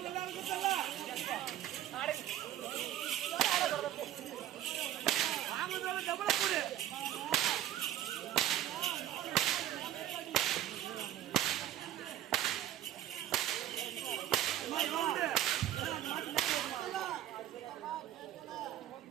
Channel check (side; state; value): left; quieter; 12.1 dB